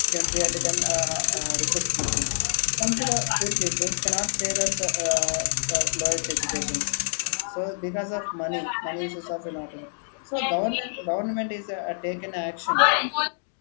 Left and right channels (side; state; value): right; silent; digital silence